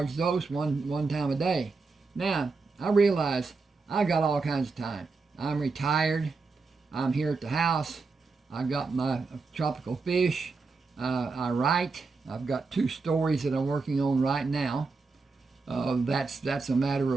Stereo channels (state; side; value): quieter; left; 4.2 dB